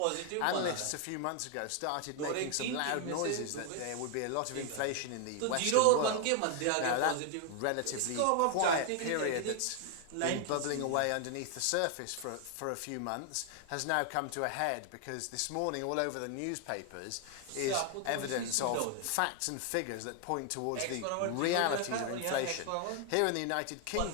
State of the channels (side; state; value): both; different; correlation 0.00